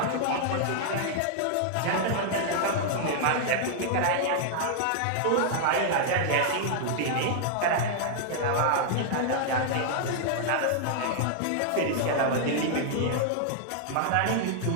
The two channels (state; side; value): different; both; correlation -0.01